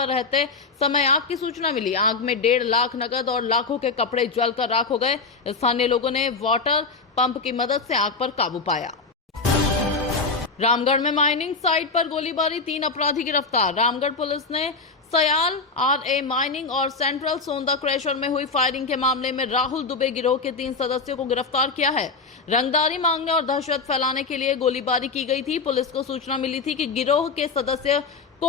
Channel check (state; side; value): quieter; right; 4.2 dB